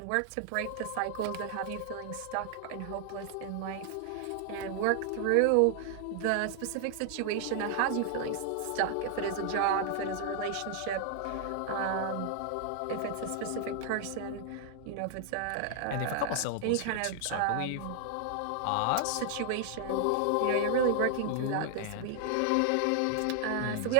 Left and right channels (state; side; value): different; both; correlation 0.00